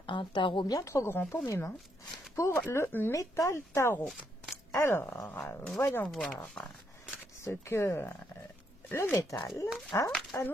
un tarot bien trop grand pour mes mains, pour le métal tarot. Alors, voyons voir ce que le métal a à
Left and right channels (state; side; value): normal; both; correlation 0.76